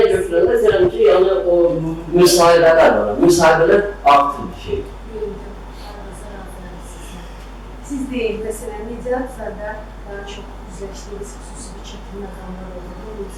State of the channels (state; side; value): identical; both; correlation 1.00